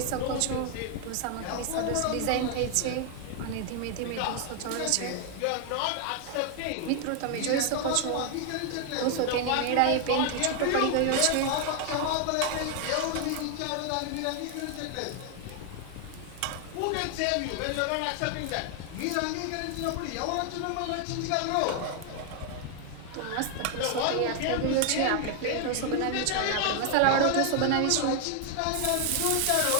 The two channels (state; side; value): different; both; correlation 0.00